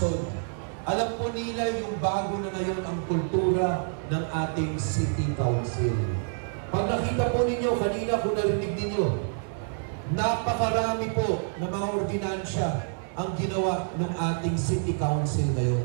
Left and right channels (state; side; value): silent; left; digital silence